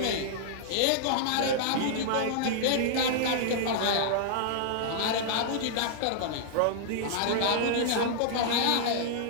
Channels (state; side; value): different; both; correlation -0.01